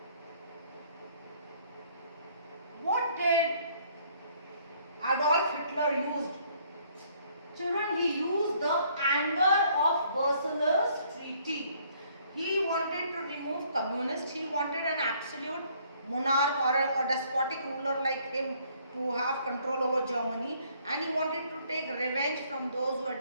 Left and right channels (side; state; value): both; inverted; correlation -0.63